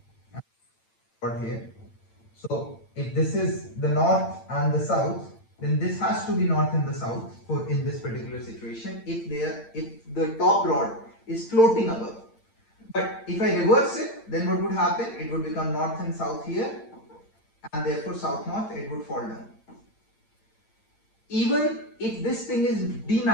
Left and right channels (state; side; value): late; right; 8.9 ms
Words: and rod here. So if this is the north and the south, then this has to be north and the south for in this particular situation. If the top rod is floating above, But if I reverse it, then what would happen? It would become north and south here, and therefore south-north, it would fall down. Even if this thing is